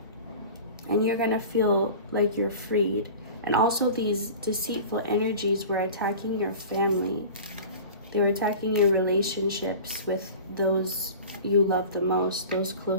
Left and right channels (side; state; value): both; inverted; correlation -0.37